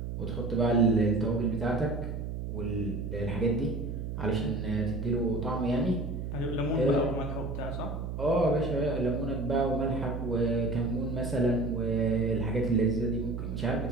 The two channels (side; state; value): right; noise; hum, 5 dB below the sound